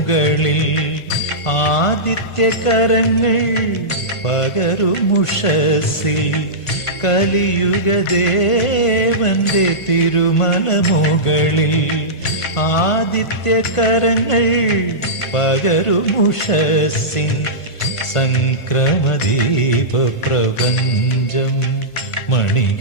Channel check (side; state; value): right; late; 1.4 ms